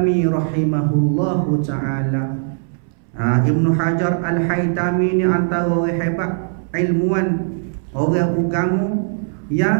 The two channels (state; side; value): silent; left; 66 dB below the other